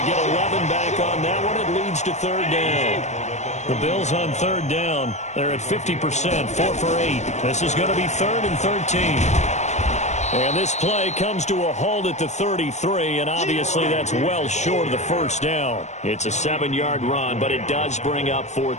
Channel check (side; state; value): right; late; 0.33 ms